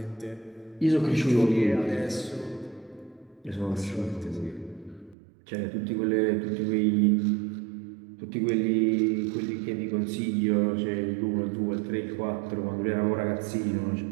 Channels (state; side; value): drops out; left; at 5.2 s